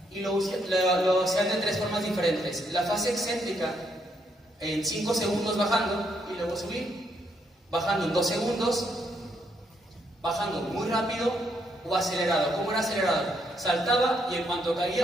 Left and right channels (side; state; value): both; normal; correlation 0.75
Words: y lo hacían de tres formas diferentes. La fase excéntrica en 5 segundos bajando y luego subir, bajando en 2 segundos, bajando muy rápido o acelerado. ¿Cómo era acelerado? Saltaba y en cuanto